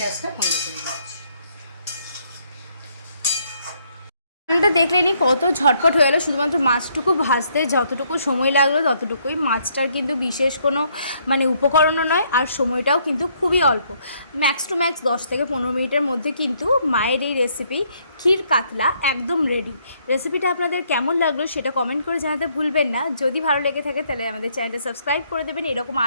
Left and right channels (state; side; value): inverted; both; correlation -0.70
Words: বন্ধ করে দিচ্ছি। রান্নাটা দেখলেনি কত ঝটপট হয়ে গেলো। শুধুমাত্র মাছটুকু ভাজতে যতটুকু সময় লাগলো ততটুকুই। মাছটার কিন্তু বিশেষ কোনো মানে উপকরণও নয়, আর সময়টাও কিন্তু খুবই অল্প, ম্যাক্স টু ম্যাক্স 10 থেকে 15 মিনিটের মধ্যে কিন্তু মায়ের এই রেসিপি ক্ষীর কাতলা একদম রেডি। রেসিপিটা আপনাদের কেমন লাগলো সেটা কমেন্ট করে জানাতে ভুলবেন না। যদি ভালো লেগে থাকে তাহলে আমাদের চ্যানেলটা সাবস্ক্রাইব করে দেবেন। এরকম